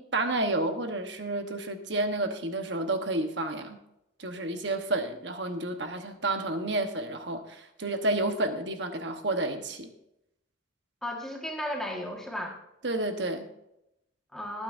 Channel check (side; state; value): both; normal; correlation -0.06